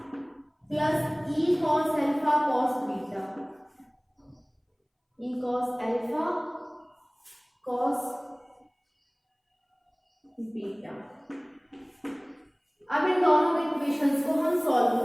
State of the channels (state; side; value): identical; both; correlation 1.00